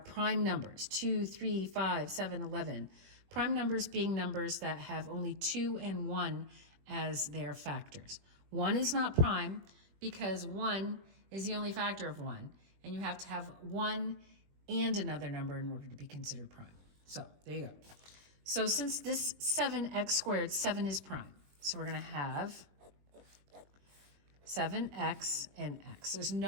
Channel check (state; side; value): late; left; 21 ms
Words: numbers, 2, 3, 5, 7, 11. Prime numbers being numbers that have only 2 and 1 as their factors. 1 is not prime because 1 is the only factor of 1, and you have to have 1 and another number in order to be considered prime. So there you go. So since this 7x squared, 7 is prime. So we're going to have 7x and x. There's